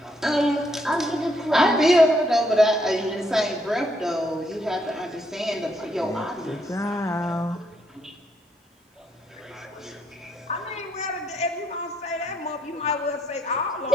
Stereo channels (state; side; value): normal; both; correlation 0.74